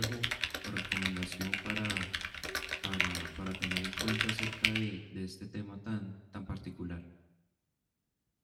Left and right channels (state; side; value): identical; both; correlation 1.00